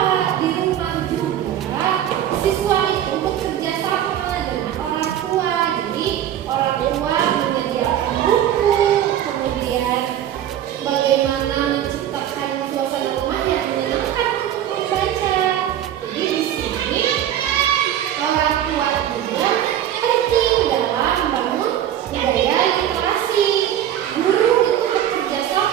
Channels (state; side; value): quieter; left; 11.0 dB